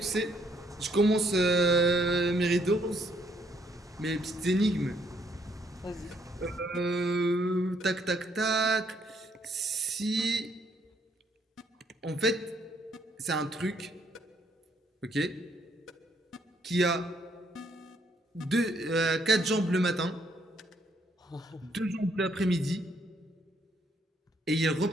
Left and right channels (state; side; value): normal; both; correlation 0.69